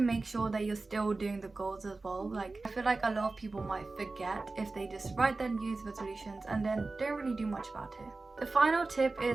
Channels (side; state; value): left; quieter; 3.5 dB